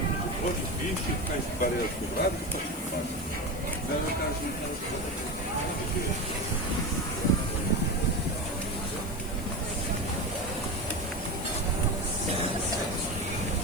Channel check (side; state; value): left; noise; hiss, 16 dB below the sound